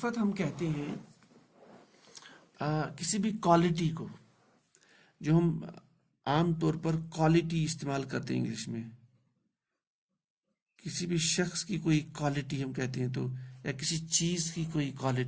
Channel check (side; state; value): both; identical; correlation 1.00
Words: ہم کہتے ہیں کسی بھی کوالٹی کو، جو ہم عام طور پر کوالٹی استعمال کرتے ہیں انگلش میں. کسی بھی شخص کی کوئی کوالٹی ہم کہتے ہیں، تو یا کسی چیز کی کوئی